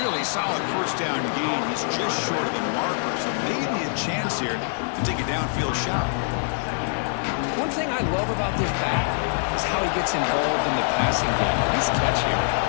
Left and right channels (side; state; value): right; silent; digital silence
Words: solid first down gain. He's just short of the marker, so maybe a chance here to take a downfield shot. One thing I love about this back is how he gets involved in the passing game. Nice catch here.